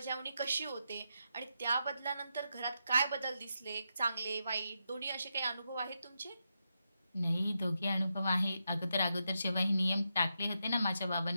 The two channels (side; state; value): both; inverted; correlation -0.85